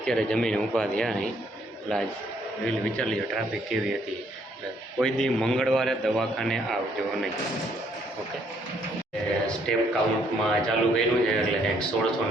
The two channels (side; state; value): both; normal; correlation 0.68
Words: જમીને ઊભા થયા અહીં। એટલે આજ વિચાર લીધો ટ્રાફિક કેવી હતી। એટલે કોઈ દી મંગળવારે દવાખાને આવજો નહીં, ઓકે। સ્ટેપ કાઉન્ટમાં ચાલુ કર્યું છે એટલે કંઈક